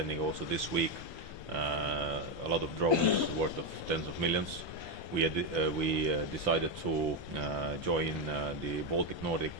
also this week a lot of drones worth of tens of millions. We decided to join the Baltic Nordic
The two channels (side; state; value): right; late; 1.2 ms